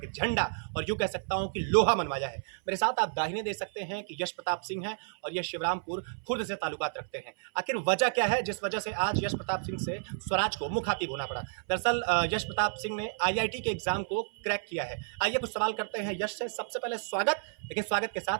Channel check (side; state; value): left; silent; 57 dB below the other